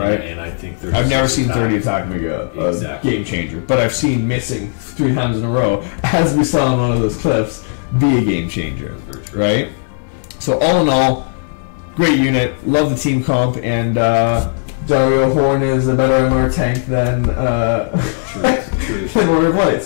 And I think I've never seen 30 attack make a game changer, but I've seen missing 3 times in a row, as we saw in one of those clips, be a game changer, right? So all in all, great unit. Love the team comp, and Dario Horn is a better MR tank than Warrior of Light.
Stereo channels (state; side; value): silent; right; digital silence